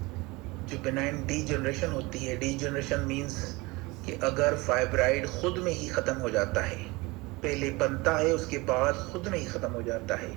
जो बेनाइन डी जनरेशन होती है, डी जनरेशन मीन्स कि अगर फाइब्राइड खुद में ही ख़त्म हो जाता है, पहले बनता है उसके बाद खुद में ही ख़त्म हो जाता है।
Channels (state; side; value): quieter; left; 23.6 dB